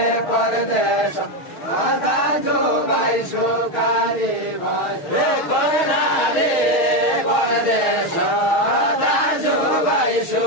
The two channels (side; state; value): right; late; 6.3 ms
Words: परदेश दाजु भाइ सुकारी भाइ कर्णाली परदेश दाजु भाइ